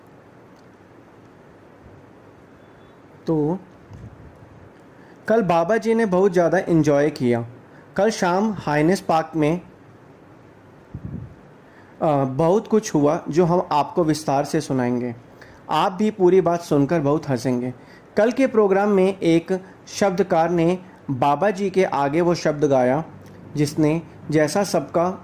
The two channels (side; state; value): both; identical; correlation 1.00